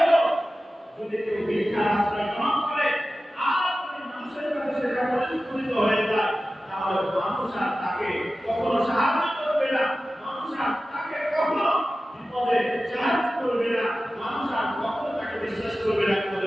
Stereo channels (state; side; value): normal; both; correlation 0.95